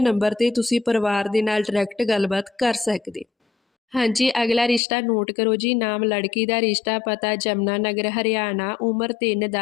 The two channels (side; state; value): right; drops out; at 4.8 s